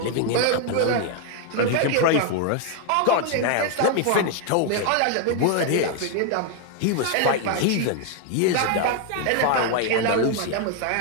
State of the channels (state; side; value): different; both; correlation 0.01